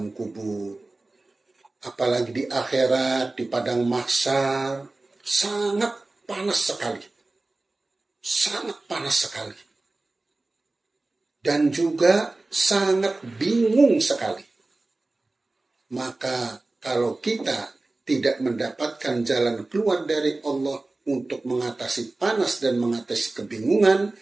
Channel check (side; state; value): left; quieter; 3.1 dB